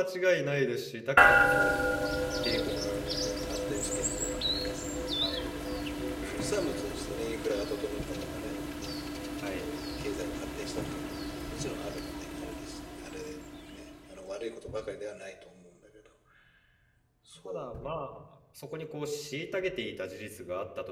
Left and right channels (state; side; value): identical; both; correlation 1.00